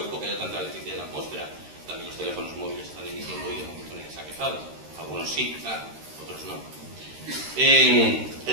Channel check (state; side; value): late; left; 13 ms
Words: que haya tanta electricidad en la atmósfera? También los teléfonos móviles están emitiendo y de momento nadie se ha quejado. Algunos sí, claro, otros no.